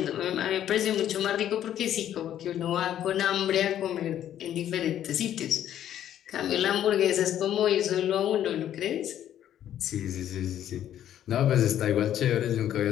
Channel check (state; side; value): quieter; right; 11.0 dB